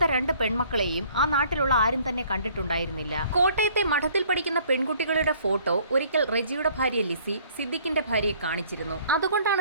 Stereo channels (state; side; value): inverted; both; correlation -0.58